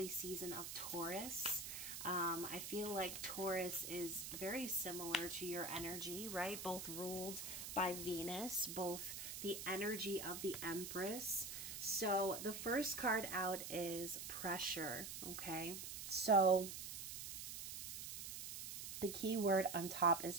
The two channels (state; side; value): noise; right; hiss, 6 dB below the sound